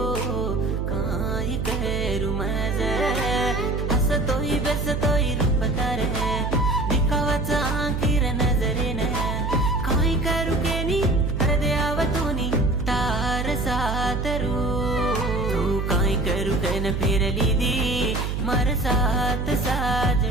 काई करू मज हसतोय बेसतोय रूप तारे दिखावाचा आखिर नजरेने काई करू केनी हृदयावतूनी तार सातरू तू काई करू कैन फिरली दी मार साथ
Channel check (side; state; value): right; noise; hum, 1 dB below the sound